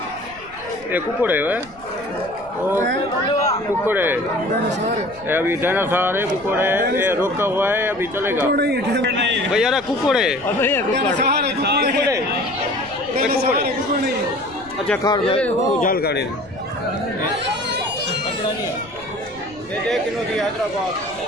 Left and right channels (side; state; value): left; noise; rumble, 24 dB below the sound